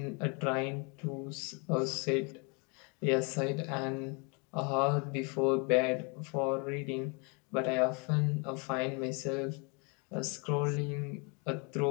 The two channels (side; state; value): right; quieter; 33.3 dB